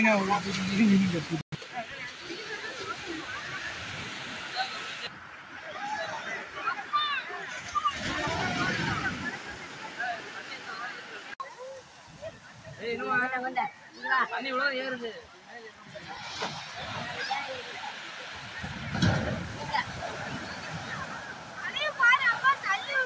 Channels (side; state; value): both; identical; correlation 1.00